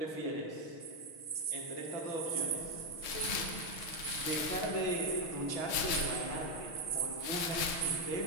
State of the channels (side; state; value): right; late; 6.3 ms